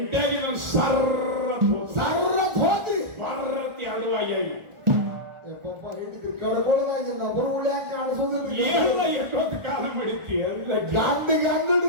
ನಾನು ಸರ್ರತ್ ಹೋದ್ರಿ. ಬರ್ರತಿ ಅಡುವಾಗಿ ಹಿಡಿದ್ರಿ ಕಡ್ಕೊಳ್ದಾಗಿಲ್ಲ. ಬರು ಉಳ್ಯಾಕ ಕಾಣಿಸೋದಿಲ್ಲ. ಎಲ್ಲ ಎಷ್ಟೊತ್ತು ಕಾಲ ಮಾಡಿತಿ ಗಂಡಿಗೆ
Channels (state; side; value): late; left; 1.4 ms